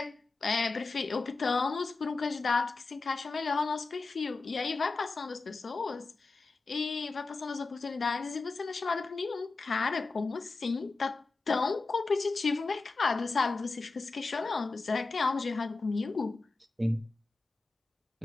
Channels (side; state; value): right; quieter; 3.8 dB